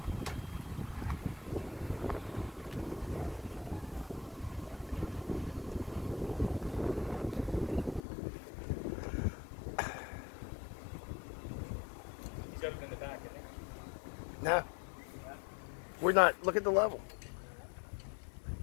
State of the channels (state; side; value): drops out; right; at 8.0 s